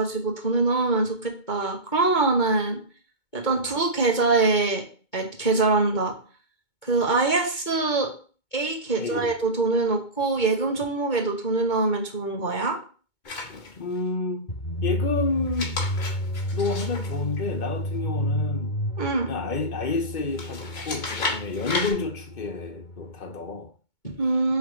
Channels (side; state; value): right; late; 2.2 ms